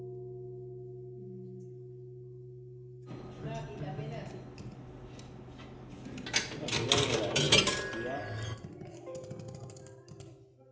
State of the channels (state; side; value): identical; both; correlation 1.00